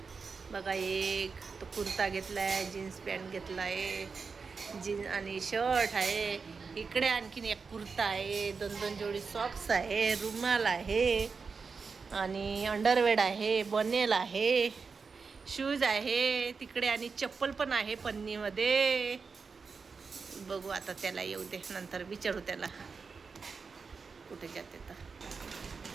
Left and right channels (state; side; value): quieter; left; 5.0 dB